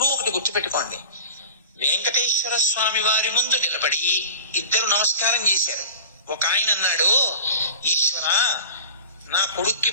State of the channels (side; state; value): both; inverted; correlation -0.35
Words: ఒకటి గుర్తుపెట్టుకోండి, వెంకటేశ్వర స్వామి వారి ముందు నిలబడి ఇద్దరు నమస్కారం చేశారు. ఒక ఆయన అన్నాడు, ఈశ్వర నా కొడుక్కి